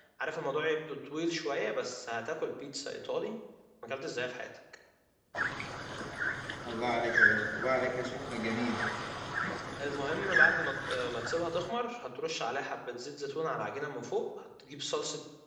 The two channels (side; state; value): both; identical; correlation 1.00